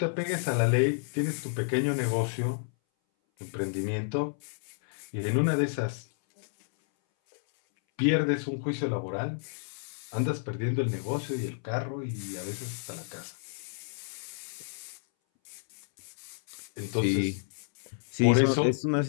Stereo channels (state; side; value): silent; right; 58 dB below the other